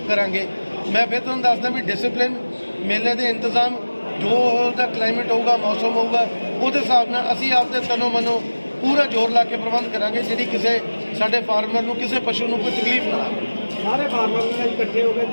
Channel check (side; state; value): both; inverted; correlation -1.00